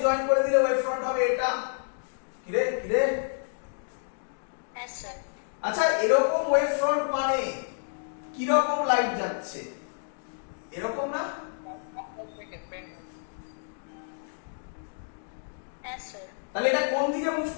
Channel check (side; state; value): right; silent; digital silence